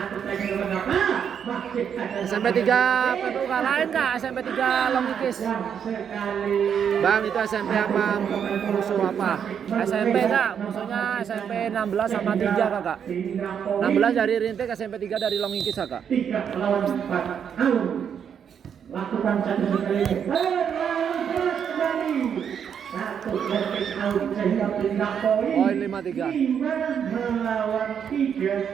SMP 3 PPUK lain kak, SMP 3 Longkis. Bang itu SMP apa? Musuh apa? SMP kak, musuhnya SMP 16 sama 3 kakak. 16 dari Rintik, SMP 3 dari Longkis kakak. 3 lawan 4. Lakukan satu sekali. Poin 5-3. Melawan 3.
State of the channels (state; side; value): quieter; left; 7.9 dB